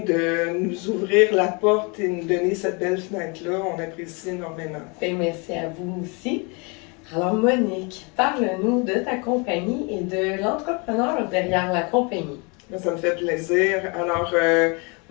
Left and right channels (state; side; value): quieter; right; 31.4 dB